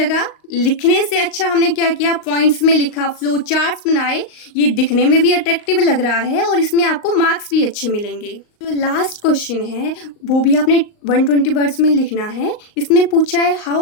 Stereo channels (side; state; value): right; late; 38 ms